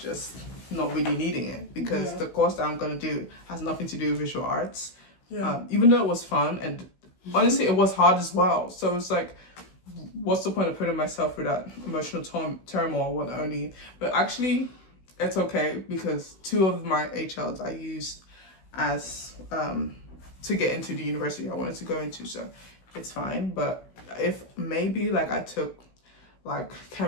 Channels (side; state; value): right; late; 16 ms